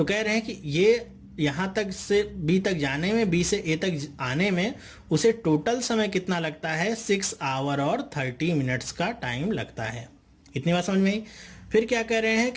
कह रहे हैं कि ये यहाँ तक से बी तक जाने में, बी से ए तक आने में उसे टोटल समय कितना लगता है, 6 आवर और 30 मिनट्स का टाइम लगता है। इतनी बात समझ में आई। फिर क्या कह रहे हैं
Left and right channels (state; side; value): identical; both; correlation 1.00